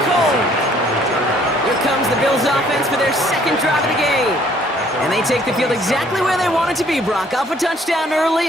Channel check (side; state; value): both; normal; correlation 0.61